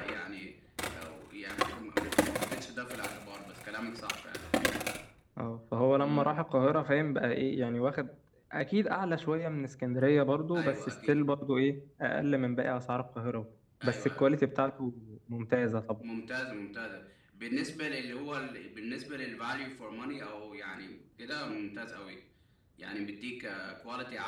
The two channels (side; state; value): both; identical; correlation 1.00